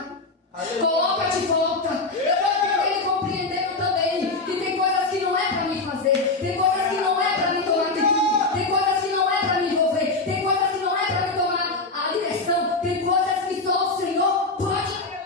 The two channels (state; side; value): quieter; right; 3.5 dB